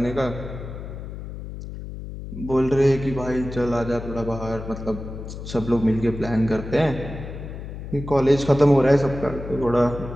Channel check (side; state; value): left; noise; hum, 10 dB below the sound